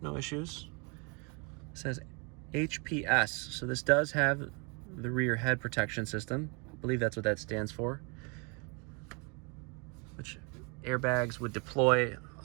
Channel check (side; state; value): left; quieter; 33.0 dB